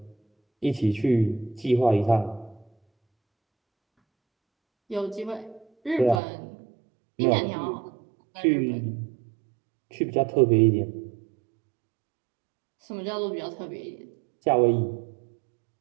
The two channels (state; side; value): drops out; left; at 6.2 s